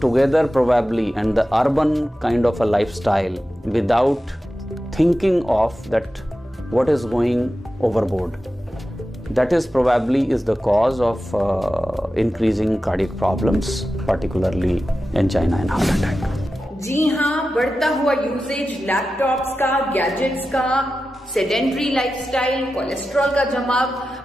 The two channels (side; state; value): both; normal; correlation 0.93